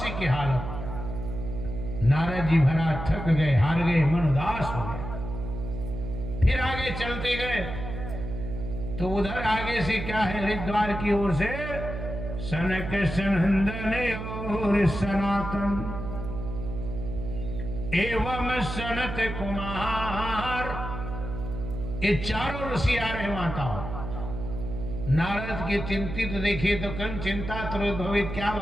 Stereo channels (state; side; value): noise; right; hum, 6 dB below the sound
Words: की हालत। नारद जी भरा थक गए, हार गए, मन उदास हो गया। फिर आगे चलते गए तो उधर आगे से क्या है? हरिद्वार की ओर से सनक सनंदन और सनातन एवं सनत कुमार, ये चारों ऋषि आ रहे माताओं। नारद के चिंतित देखे तो कन चिंता त्रोद्भवित, क्या